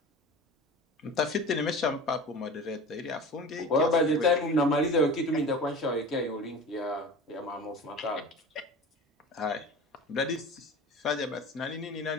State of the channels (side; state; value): both; normal; correlation 0.36